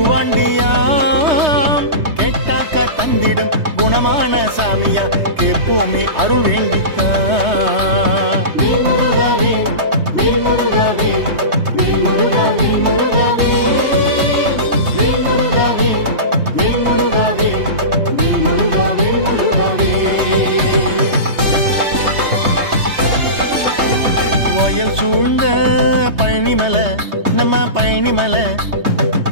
கேட்டாக்க தந்திடும் குணமான சாமியா கேப்போமே அருள் வேண்டித்தான் மேல்முருகாவே மேல்முருகாவே மேல்முருகாவே முருகாவே மேல்முருகாவே மேல்முருகாவே மேல்முருகாவே முருகாவே வயல் சூழ்ந்த பழனிமலை நம்ம பழனிமலை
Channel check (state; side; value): late; left; 3.2 ms